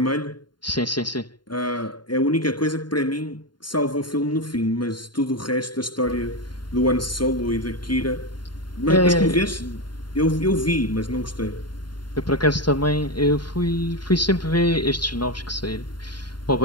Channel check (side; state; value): right; late; 0.71 ms